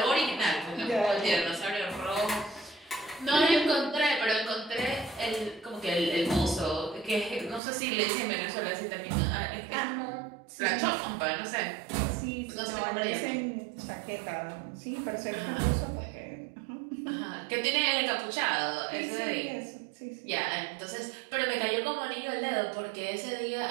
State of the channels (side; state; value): left; drops out; at 7.6 s